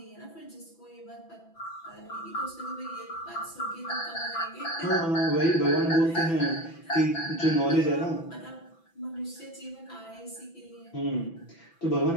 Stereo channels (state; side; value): late; right; 6.0 ms